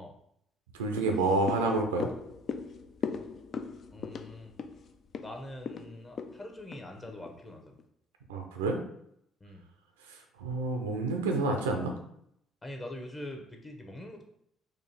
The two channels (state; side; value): normal; both; correlation 0.32